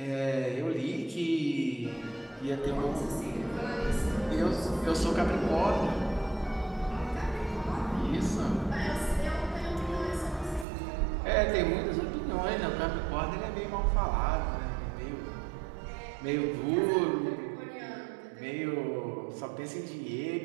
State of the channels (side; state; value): left; drops out; at 10.7 s